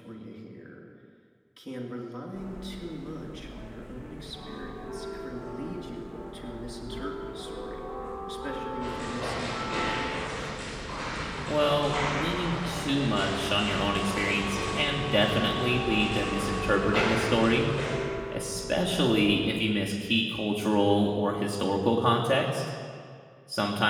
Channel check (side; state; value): both; identical; correlation 1.00